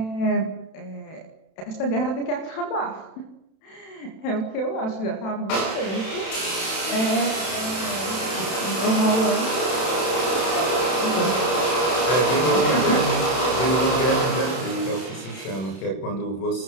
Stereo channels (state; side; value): late; right; 31 ms